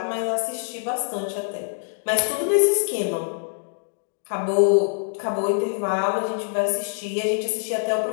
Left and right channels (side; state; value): right; silent; digital silence